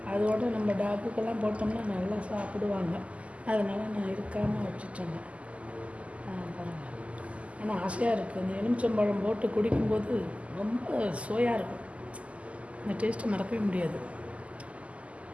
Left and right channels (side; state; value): left; late; 0.063 ms